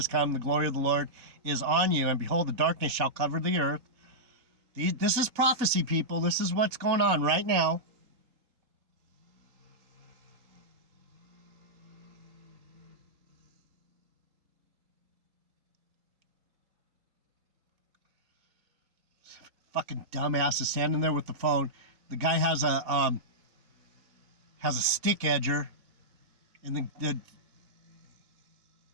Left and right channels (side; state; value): left; late; 3.8 ms